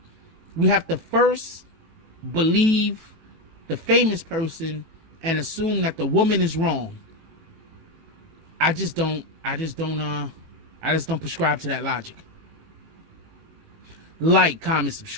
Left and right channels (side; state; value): left; late; 18 ms